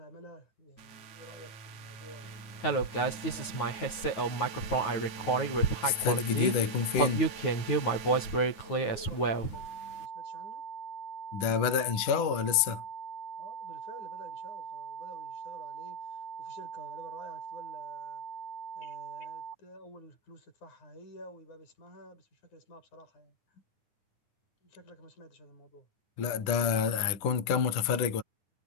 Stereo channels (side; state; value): right; late; 9.3 ms